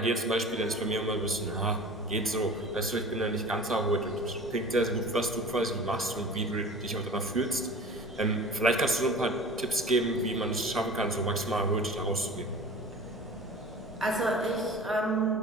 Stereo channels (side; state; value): both; normal; correlation 0.40